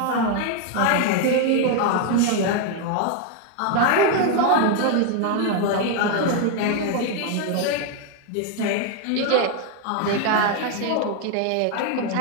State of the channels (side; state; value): both; different; correlation 0.01